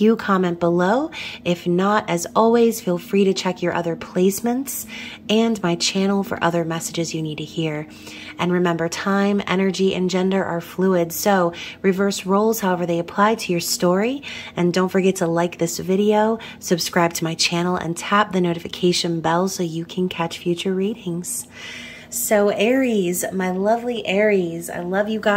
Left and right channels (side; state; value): both; identical; correlation 1.00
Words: you, comment below. If not, as always, feel free to check your other placements and my channel for other messages you need to hear. And remember, time, energy, and gender are fluid, so reverse roles however they apply to your story. And don't forget to like this video, subscribe to my channel, and tap the notification bell so you can catch future readings. So Aries, my lovely Aries, I love you